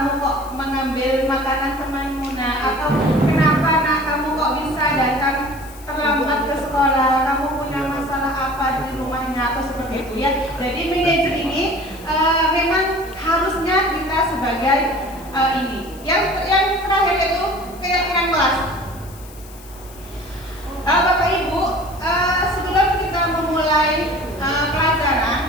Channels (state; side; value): noise; left; hiss, 21 dB below the sound